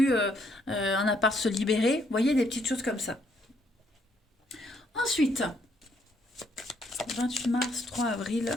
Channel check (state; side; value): normal; both; correlation 0.70